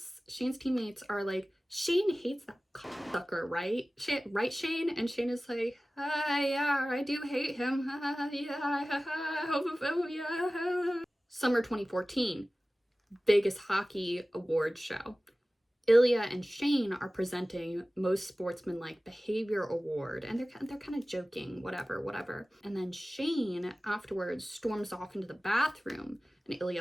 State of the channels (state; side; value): normal; both; correlation 0.97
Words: are like, Shane hates that cocksucker, right? Right, Shane? And Shane is like, yeah, I do hate him. Yeah, homophobia. Summer 2014, Vegas Hockey Awards show. Ilya and Shane are presenting most sportsmanlike behavior award, and they're kind of joking, whatever. And then Shane afterwards storms off into the bathroom, and